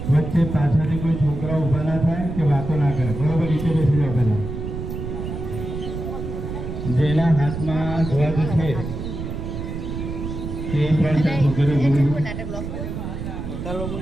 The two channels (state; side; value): noise; right; rumble, 6 dB below the sound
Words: વચ્ચે પાછળથી કોઈ છોકરા ઊભા ના થાય કે વાતો ના કરે, બરોબર? નીચે બેસી જાઓ પહેલા. જેના હાથમાં ધ્વજ છે તે પણ